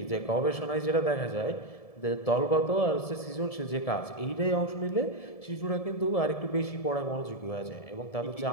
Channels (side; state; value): right; late; 1.7 ms